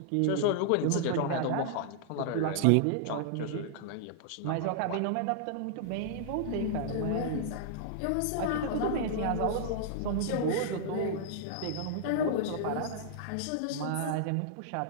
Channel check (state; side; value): different; both; correlation -0.01